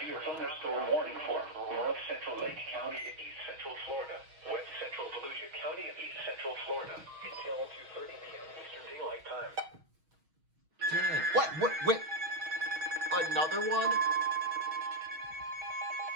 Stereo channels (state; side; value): late; left; 6.3 ms